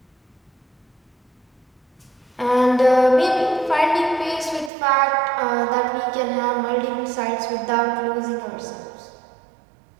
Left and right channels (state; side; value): drops out; left; at 4.7 s